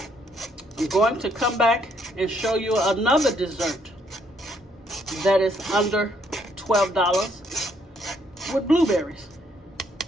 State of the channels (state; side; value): normal; both; correlation 0.69